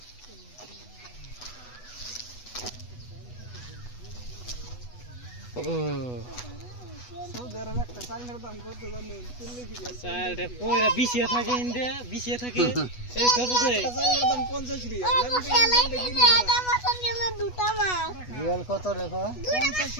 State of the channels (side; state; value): right; late; 8.1 ms